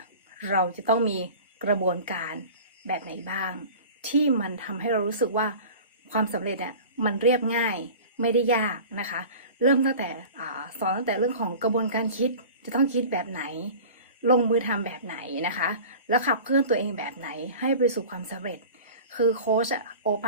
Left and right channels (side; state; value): both; inverted; correlation -0.39